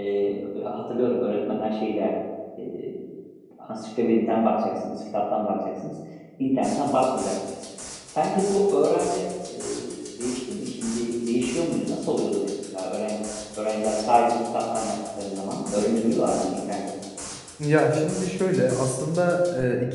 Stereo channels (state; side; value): identical; both; correlation 1.00